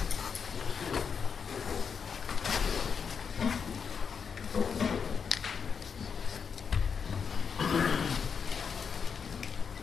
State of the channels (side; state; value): right; quieter; 6.3 dB